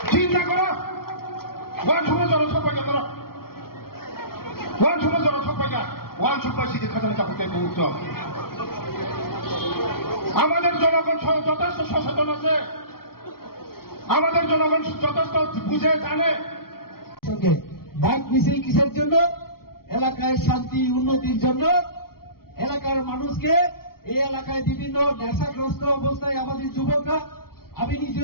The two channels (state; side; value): late; right; 0.93 ms